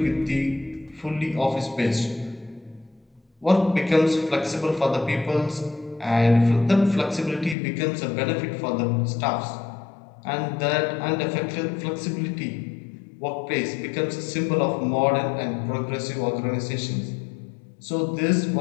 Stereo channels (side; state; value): right; drops out; at 7.6 s